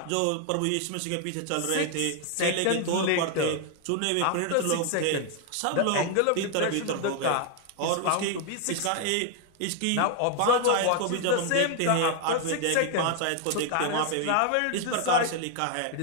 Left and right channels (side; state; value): both; different; correlation 0.00